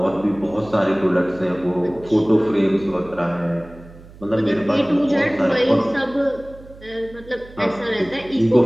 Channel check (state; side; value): noise; right; hum, 20 dB below the sound